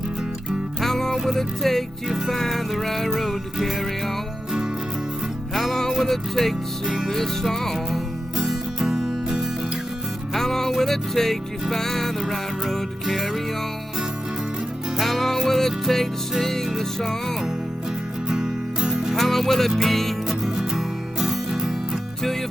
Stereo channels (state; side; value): normal; both; correlation 0.90